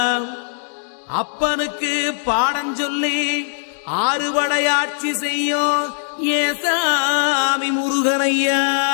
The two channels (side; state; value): right; silent; digital silence